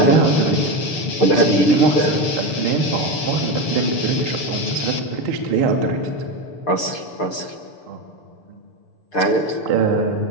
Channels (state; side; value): late; right; 6.9 ms